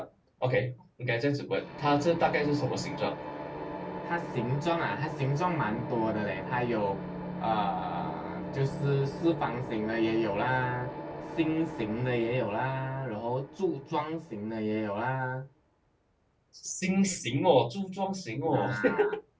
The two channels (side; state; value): both; identical; correlation 1.00